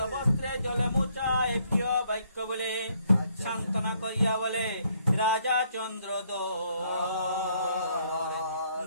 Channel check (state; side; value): inverted; both; correlation -0.69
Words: বস্ত্রে জলে মোচায় প্রিয় বাক্য বলে। সান্ত্বনা করিয়া বলে রাজা চন্দ্র